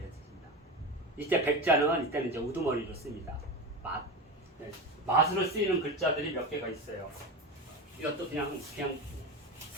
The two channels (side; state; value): both; normal; correlation 0.23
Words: 뜻입니다. 이때 백자는 이때는 이제 우두머리로 씁니다. 맛으로 쓰이는 글자들이 몇 개가 있어요. 이것도 그냥